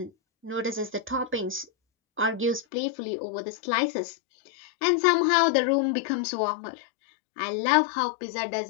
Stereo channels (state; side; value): drops out; right; at 2.7 s